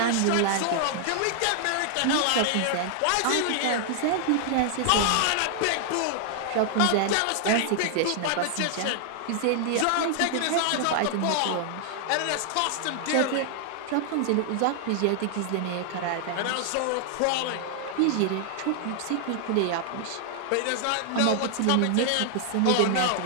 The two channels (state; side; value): different; both; correlation 0.00